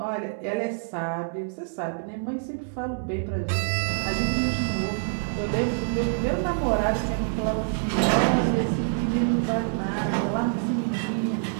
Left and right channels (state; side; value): silent; left; 61 dB below the other